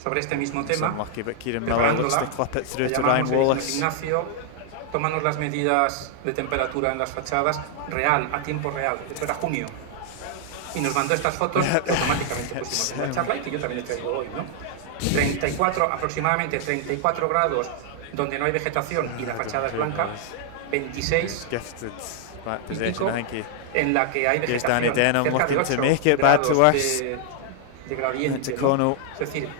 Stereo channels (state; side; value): different; both; correlation 0.00